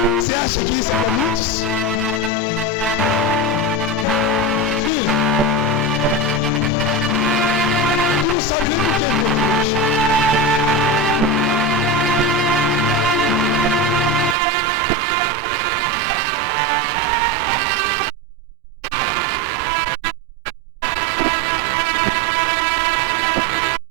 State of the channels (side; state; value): left; drops out; at 14.4 s